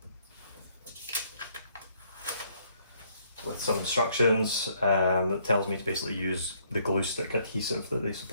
with some instructions that tells me to basically use the glue stick adhesive that they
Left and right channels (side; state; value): both; inverted; correlation -0.67